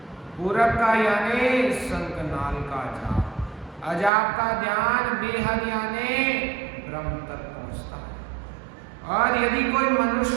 पूरब का यानी शंखनाल का जाप, अजाप का ध्यान बेहद यानी ब्रह्म तक पहुंचता है। और यदि कोई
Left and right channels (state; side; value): drops out; left; at 4.1 s